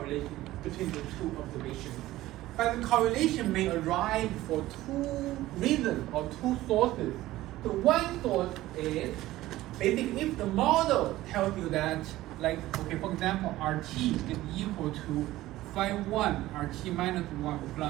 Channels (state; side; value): quieter; left; 16.2 dB